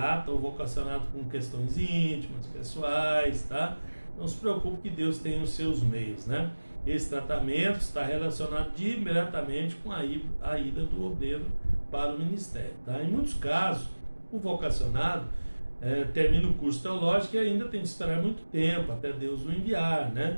o vocacionado com questões íntimas, pessoais, tá? Não se preocupe que Deus tem os seus meios, né? Esse tratamento está relacionado diretamente com a ida do obreiro para o ministério, tá? Em muitos casos, o vocacionado termina o curso teológico e ainda tem que esperar muito tempo até Deus o enviar,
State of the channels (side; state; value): both; inverted; correlation -1.00